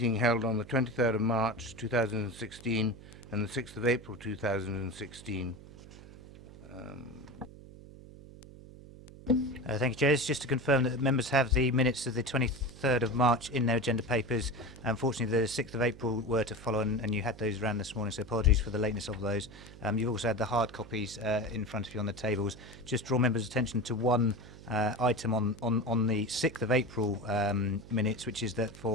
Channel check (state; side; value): noise; right; hum, 18 dB below the sound